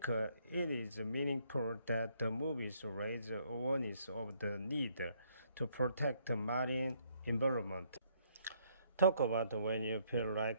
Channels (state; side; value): inverted; both; correlation -0.68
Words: it is meaningful that the movies raise awareness of the need to protect the marine environment. Talk about when you feel